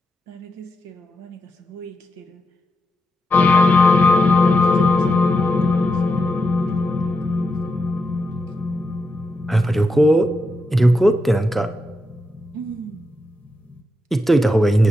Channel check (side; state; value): both; normal; correlation 0.85